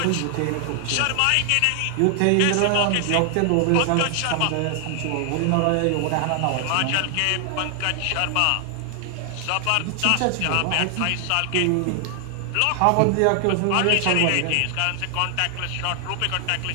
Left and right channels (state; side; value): different; both; correlation 0.00